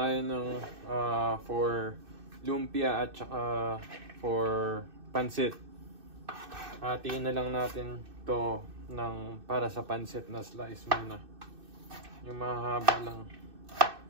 ng for lumpia at saka for pansit. Hatiin na lang natin to ng para sa pansit na slice muna. Yung mahaba lang.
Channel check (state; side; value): late; left; 2.6 ms